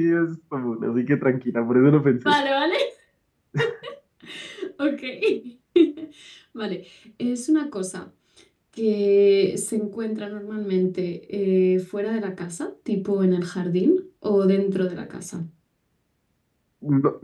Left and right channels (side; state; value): both; identical; correlation 1.00